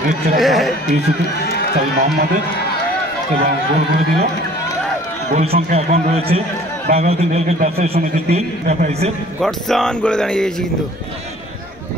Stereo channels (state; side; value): normal; both; correlation 0.51